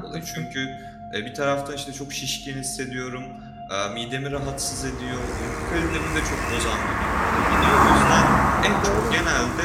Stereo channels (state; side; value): identical; both; correlation 1.00